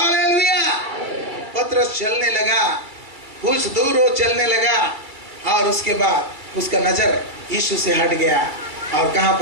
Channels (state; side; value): late; left; 2.3 ms